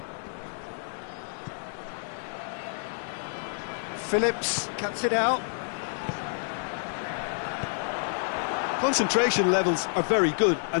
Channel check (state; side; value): silent; right; 59 dB below the other